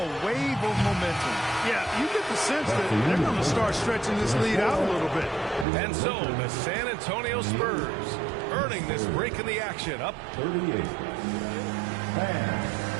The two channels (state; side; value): drops out; left; at 5.7 s